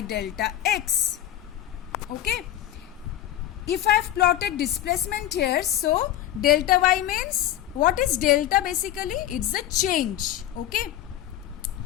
delta x. Okay. If I have plotted displacement here, so delta y means, what is delta basically? It's a change. Okay.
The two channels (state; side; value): quieter; right; 12.4 dB